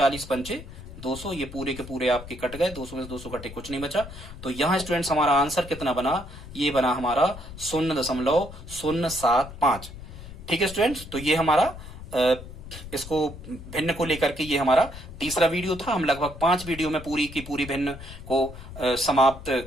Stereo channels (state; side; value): noise; left; rumble, 13 dB below the sound